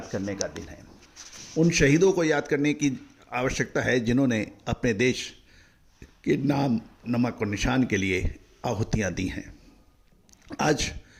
करने का दिन है। उन शहीदों को याद करने की आवश्यकता है जिन्होंने अपने देश के नाम, नमक और निशान के लिए आहुतियां दी हैं। आज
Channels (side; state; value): both; identical; correlation 1.00